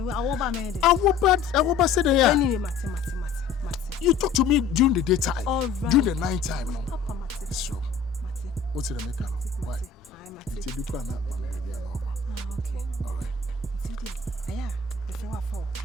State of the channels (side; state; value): right; quieter; 5.7 dB